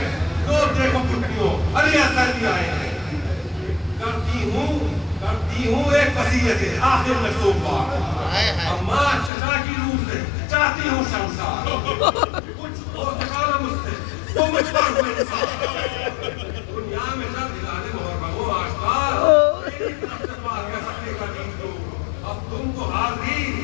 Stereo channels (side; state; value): right; drops out; at 9.3 s